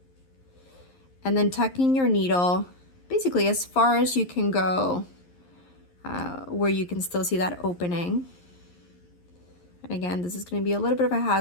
And then tucking your needle basically as far as you can go, where you can still see that opening. And again, this is going to be a little bit of a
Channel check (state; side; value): late; right; 11 ms